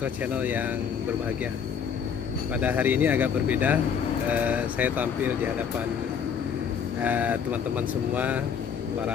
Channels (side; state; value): right; quieter; 7.2 dB